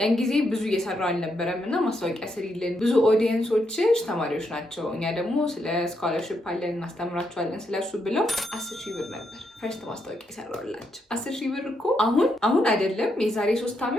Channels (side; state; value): both; normal; correlation 0.79